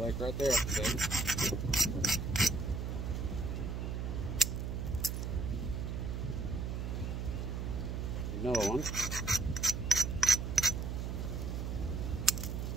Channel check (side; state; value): right; noise; hum, 3 dB below the sound